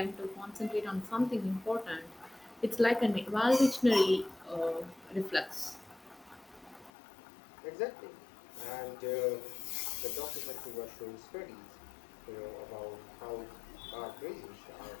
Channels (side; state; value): right; drops out; at 6.9 s